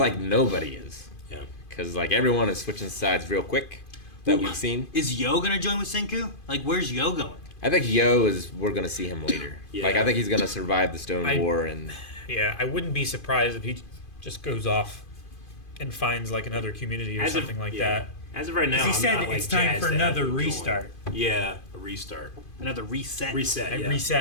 nobody is. Yeah. Because like everyone is switching sides real quick that we've seen. Is Yo gonna join with Senku? Like, where's Yo going? I think we're gonna see him later. Yeah. Like I think he's gonna survive the Stone War and Yeah, I wouldn't be surprised if he just goes off and finds like another community or something like that. As of right now, He I'm said not, like, it's time jazzed for to another have him join. restart. Yeah, a restart. Another reset. Reset. Yeah.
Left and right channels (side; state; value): right; late; 2.5 ms